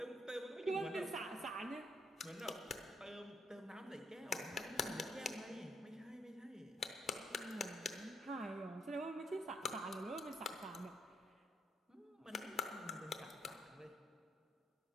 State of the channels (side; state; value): both; normal; correlation 0.73